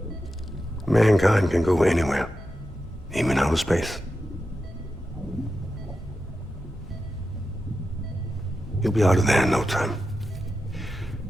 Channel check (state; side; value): normal; both; correlation 0.90